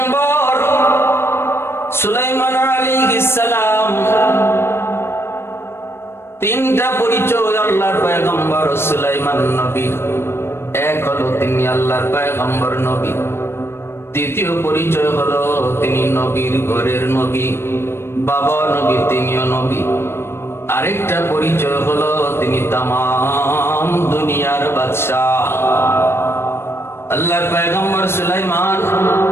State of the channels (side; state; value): right; late; 0.12 ms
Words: সুলাইমান আলাইহিস সালাম, তিনটা পরিচয় আল্লাহর পয়গম্বর সুলাইমান নবী। এক হলো তিনি আল্লাহর পয়গম্বর নবী। দ্বিতীয় পরিচয় হলো তিনি নবীর ঘরের নবী, বাবা নবী, তিনিও নবী। আরেকটা পরিচয় হলো তিনি তামাম দুনিয়ার বাদশাহ। আল্লাহর পয়গম্বর সুলাইমান